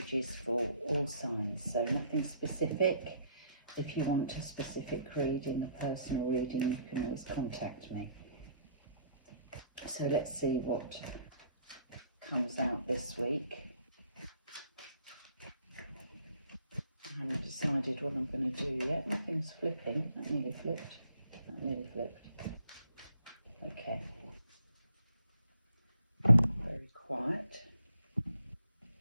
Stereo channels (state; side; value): inverted; both; correlation -0.62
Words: for all signs, so nothing specific. If you want a specific reading, a personal reading, you can always contact me. So let's see what comes out this week. I haven't decided what I'm going to do yet. Nothing's flipping. That nearly flipped. That nearly flipped. Okay. Very quiet.